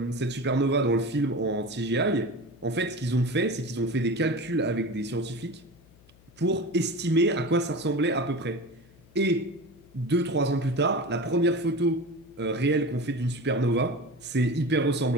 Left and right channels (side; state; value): left; noise; hum, 27 dB below the sound